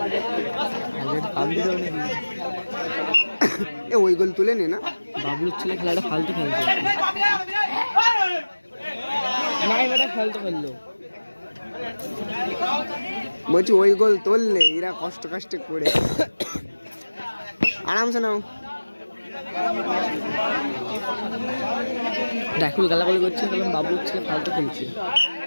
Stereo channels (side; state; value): both; inverted; correlation -1.00